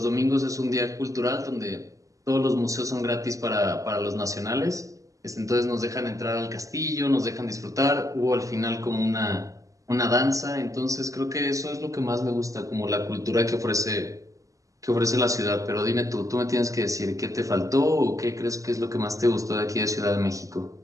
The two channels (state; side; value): late; left; 0.16 ms